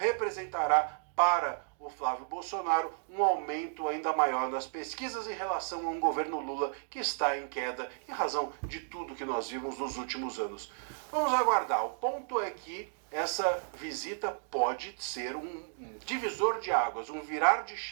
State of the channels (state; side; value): silent; left; digital silence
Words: para o Flávio Bolsonaro um aumento ainda maior nas pesquisas em relação a um governo Lula que está em queda em razão de tudo que nós vimos nos últimos anos. Vamos aguardar. O ponto é que essa visita pode ser um divisor de águas, um virar de